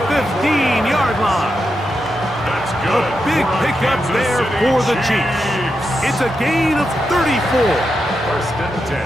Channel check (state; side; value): normal; both; correlation 0.86